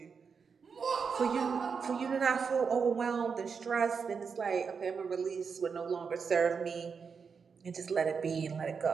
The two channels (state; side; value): quieter; left; 5.8 dB